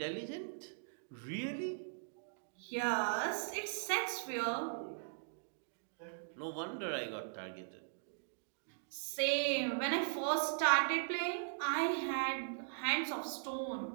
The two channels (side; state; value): left; silent; digital silence